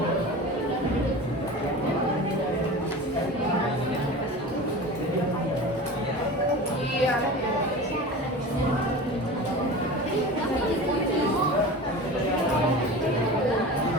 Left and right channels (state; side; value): normal; both; correlation 0.33